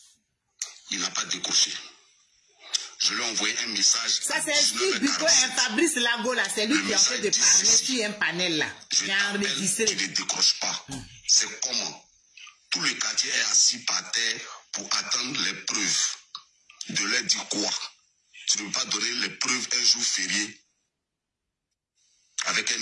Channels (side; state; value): both; identical; correlation 1.00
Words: Il n'a pas décroché. Je lui ai envoyé un message. Ça, c'est Fabrice Lago, là. C'est lui qui est en train de parler sur un panel, là. Je t'appelle, tu ne décroches pas. C'est comment? Tout le quartier est assis par terre pour attendre les preuves. De leur dire quoi? Tu ne peux pas donner les preuves un jour férié avec